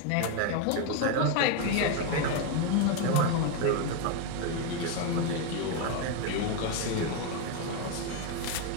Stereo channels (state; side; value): different; both; correlation 0.01